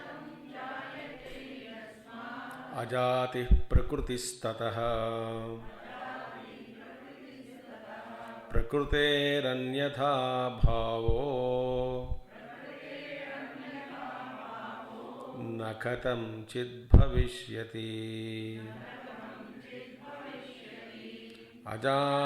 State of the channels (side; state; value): both; identical; correlation 1.00